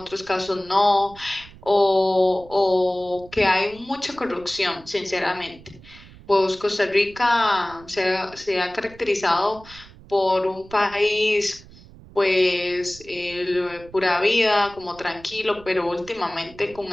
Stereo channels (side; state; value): right; noise; rumble, 21 dB below the sound